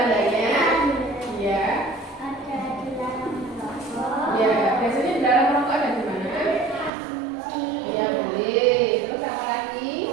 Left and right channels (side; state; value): left; drops out; at 6.9 s